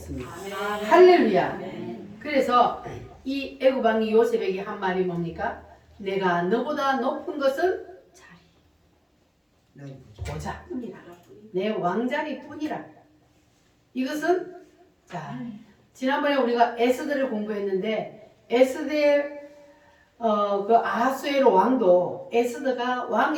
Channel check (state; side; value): identical; both; correlation 1.00